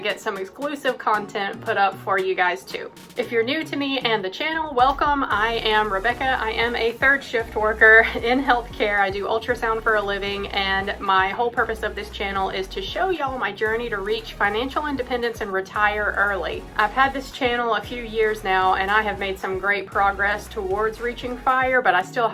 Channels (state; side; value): identical; both; correlation 1.00